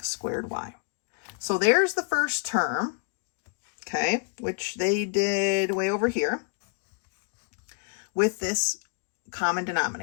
squared y. So there's the first term, okay, which they did way over here with this common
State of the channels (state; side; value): quieter; right; 39.9 dB